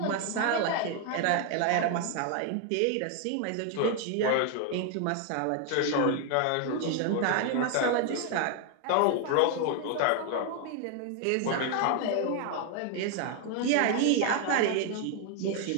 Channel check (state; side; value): different; both; correlation 0.00